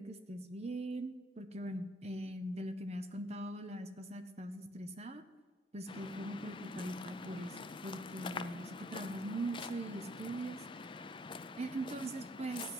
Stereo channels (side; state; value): both; normal; correlation 0.65